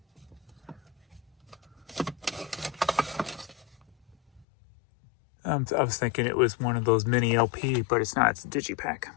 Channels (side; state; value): right; drops out; at 4.5 s